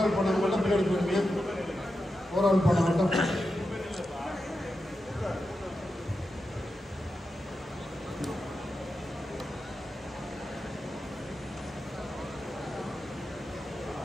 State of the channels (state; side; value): normal; both; correlation 0.89